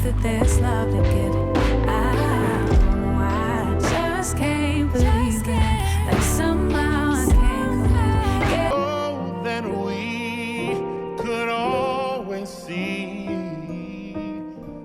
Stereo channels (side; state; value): both; identical; correlation 1.00